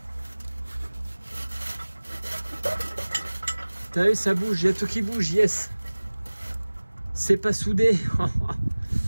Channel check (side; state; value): both; inverted; correlation -1.00